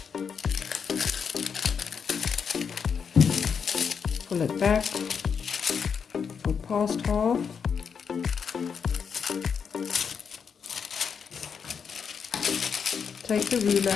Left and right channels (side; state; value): right; quieter; 6.5 dB